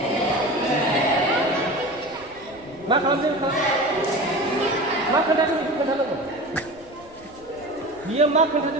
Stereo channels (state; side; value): noise; left; rumble, 25 dB below the sound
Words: Mak kalau dia mak kena tu itu kena lagu. Dia mak kena